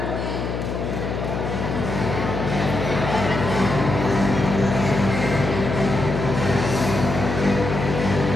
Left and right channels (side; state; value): left; noise; hum, 4 dB below the sound